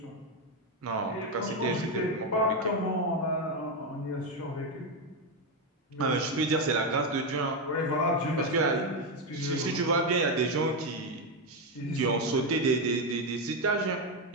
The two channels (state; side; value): normal; both; correlation 0.07